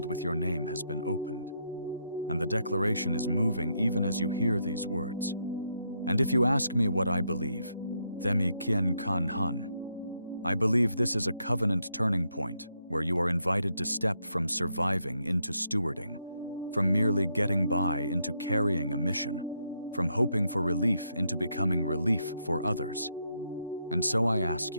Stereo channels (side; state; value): both; inverted; correlation -0.78